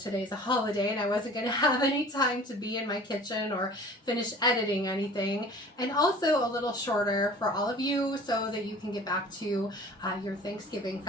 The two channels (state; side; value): normal; both; correlation 0.45